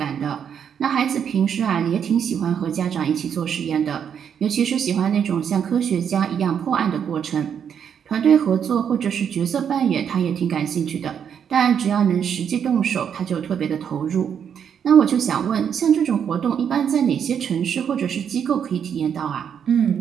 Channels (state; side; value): quieter; left; 8.0 dB